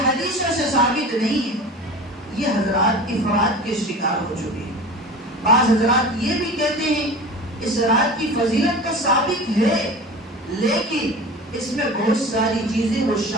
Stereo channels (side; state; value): both; normal; correlation 0.35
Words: حدیثوں سے ثابت نہیں ہے، یہ حضرات افراد کے شکار ہو چکے ہیں۔ بعض حضرات یہ بھی کہتے ہیں اس رات کی فضیلت تو ثابت ہے، لیکن اس میں بہت ساری چیزیں وہ